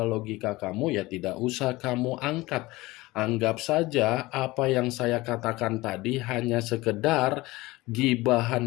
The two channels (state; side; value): quieter; right; 20.3 dB